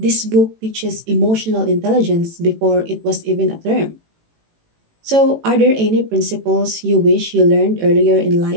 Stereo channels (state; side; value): late; left; 18 ms